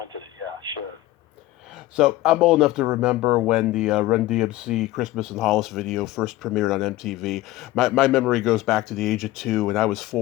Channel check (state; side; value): quieter; right; 16.7 dB